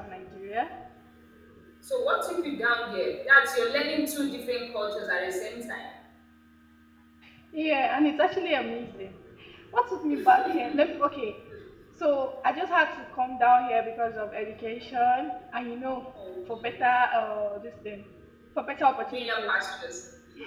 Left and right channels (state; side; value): identical; both; correlation 1.00